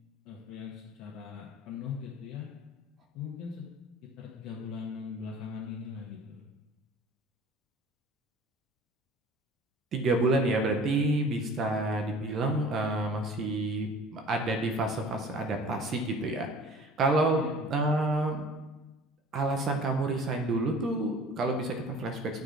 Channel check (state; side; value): normal; both; correlation 0.46